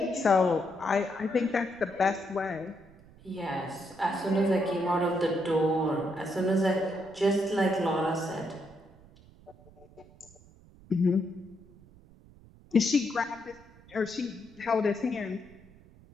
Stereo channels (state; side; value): noise; right; rumble, 24 dB below the sound